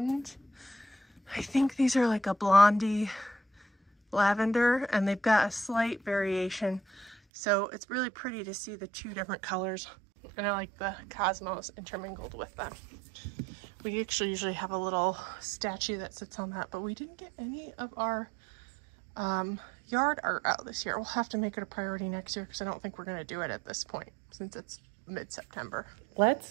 I think these are like a blondie lavender, and they've got a slight variation. So it's really pretty to see the 2 different colors. And I like the cosmos intermingled with them. We actually usually have a little statue that sits on that, but we didn't get any of our yard art out this year. We'll have to make it a priority next year because I don't think we're going to do it at this point since it's mid-September.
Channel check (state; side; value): drops out; left; at 7.2 s